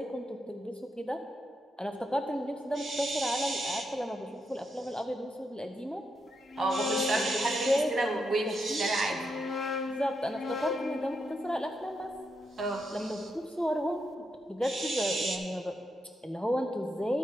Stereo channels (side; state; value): both; normal; correlation 0.83